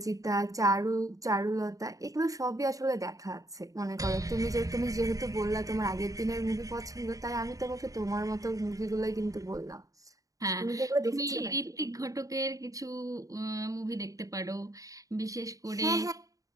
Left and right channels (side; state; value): left; late; 0.16 ms